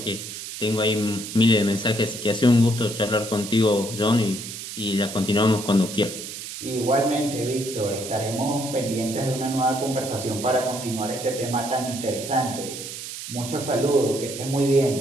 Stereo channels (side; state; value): right; noise; hiss, 9 dB below the sound